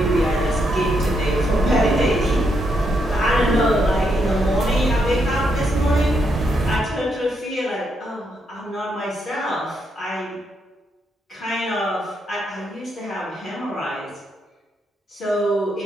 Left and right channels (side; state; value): both; normal; correlation 0.79